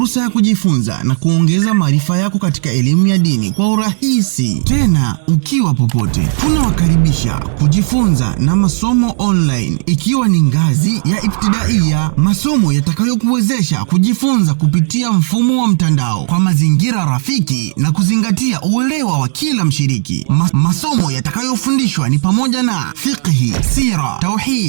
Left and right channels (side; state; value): left; silent; digital silence